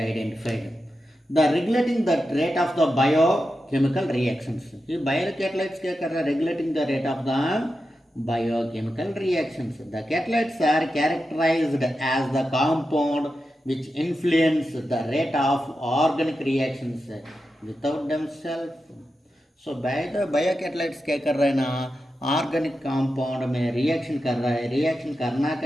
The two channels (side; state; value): both; normal; correlation 0.90